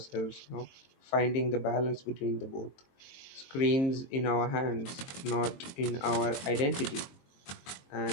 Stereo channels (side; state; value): right; late; 22 ms